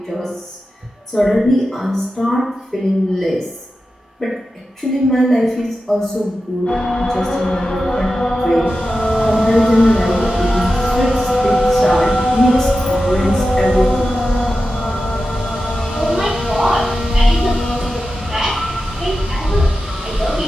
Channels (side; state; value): both; normal; correlation 0.92